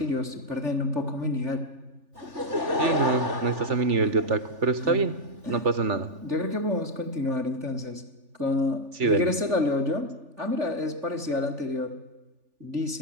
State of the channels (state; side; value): late; left; 3.4 ms